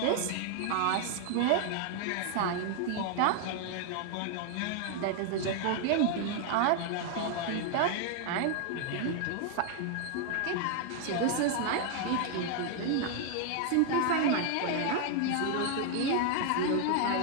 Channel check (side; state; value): both; different; correlation 0.00